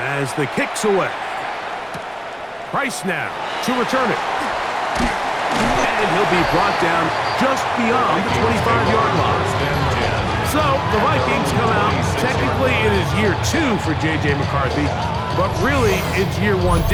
the kick's away. Price now to return it. And he'll be brought down just beyond the 25-yard line. So the Vikings come out. Technically, it is year 2 for J.J. McCarthy, but really it's year 1.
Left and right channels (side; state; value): both; identical; correlation 1.00